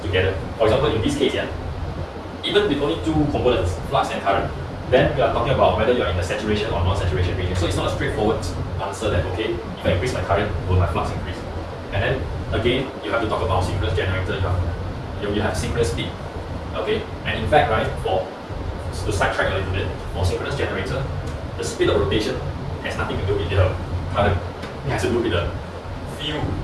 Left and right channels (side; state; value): both; identical; correlation 1.00